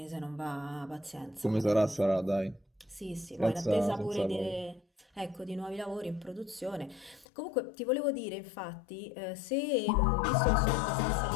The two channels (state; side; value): drops out; right; at 7.2 s